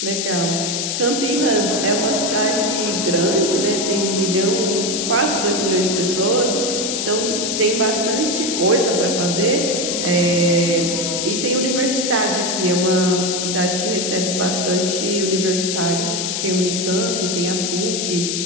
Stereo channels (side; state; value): left; noise; hiss, 1 dB below the sound